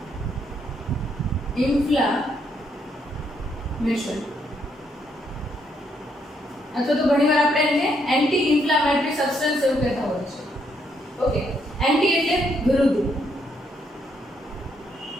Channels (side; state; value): both; normal; correlation 0.74